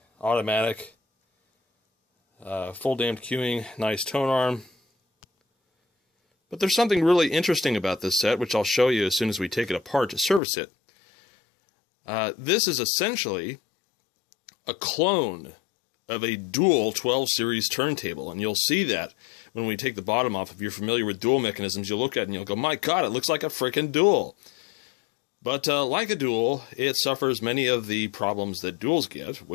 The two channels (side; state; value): right; drops out; at 10.4 s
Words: automatic, full damped queuing, nice tone arm. But there's something really interesting about this set, which I'll show you as soon as we take it apart to service it. This is essentially a clone of a dual 12 series turntable, and you'll see that when we take the bottom off. If you're familiar with dual mechanisms, you'll look at it and you'll go, my god, it looks like a frickin' dual. But like a dual, it suffers many of the problems that duals get,